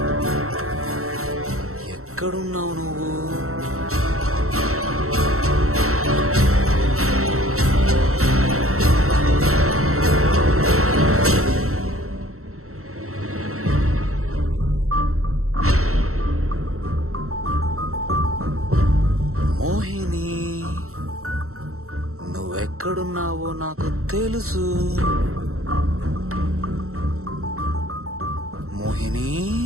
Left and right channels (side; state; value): left; late; 0.63 ms